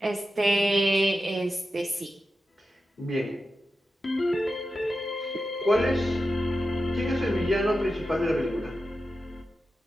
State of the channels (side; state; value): both; normal; correlation 0.91